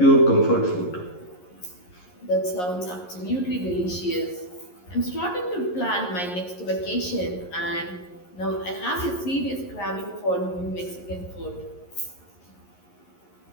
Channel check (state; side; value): late; right; 11 ms